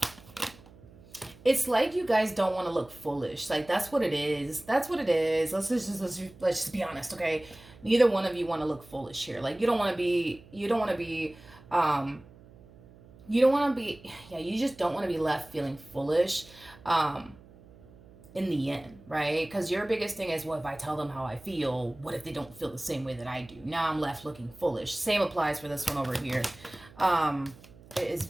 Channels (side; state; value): right; noise; hum, 23 dB below the sound